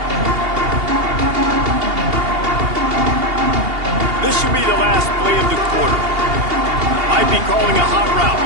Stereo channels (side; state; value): left; late; 2.8 ms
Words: This should be the last play of the quarter. Might be calling a hot route.